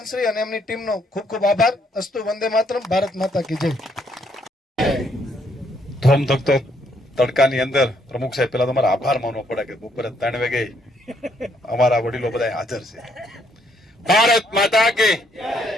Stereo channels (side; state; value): both; normal; correlation 0.71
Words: અને એમની ટીમનો ખૂબ ખૂબ આભાર. અસ્તુ વંદે માતરમ. ભારત માતા કી જય. ધોમધખતો તડકાની અંદર પ્રમુખ સાહેબ પેલા તમારા આભાર માનવો પડે કે બપોરે 3 વાગે અમારા વડીલો બધા હાજર છે. ભારત માતા કે